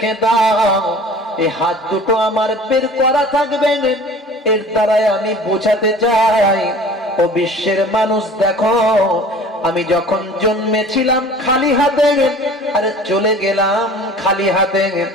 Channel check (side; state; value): both; normal; correlation 0.44